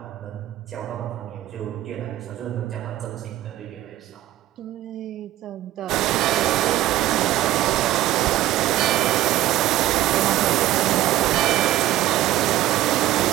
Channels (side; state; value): left; quieter; 14.4 dB